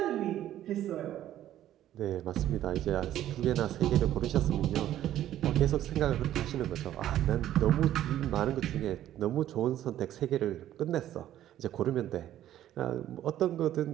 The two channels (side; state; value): left; quieter; 12.4 dB